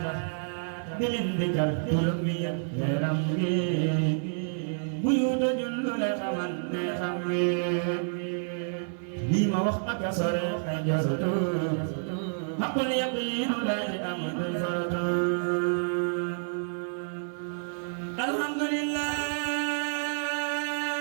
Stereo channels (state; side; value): silent; left; digital silence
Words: di leen dikkal turam wi yaram wi bu yu dojul lu la xamal ne xam wi lii ma wax ak a sore ay jorutu xaqul yaqiinu laa di am duñ forotu alhamdulillah